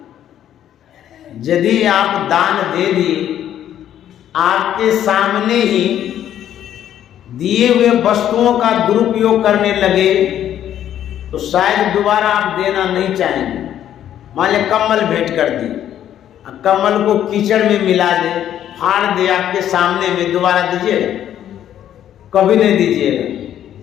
यदि आप दान दे दिए, आपके सामने ही दिए हुए वस्तुओं का दुरुपयोग करने लगे तो शायद दोबारा आप देना नहीं चाहेंगे। मान लिया कम्बल भेंट कर दी, कम्बल को कीचड़ में मिला दे, फाड़ दे आपके सामने में, दोबारा दीजिएगा? कभी नहीं दीजिएगा।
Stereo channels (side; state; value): right; quieter; 10.8 dB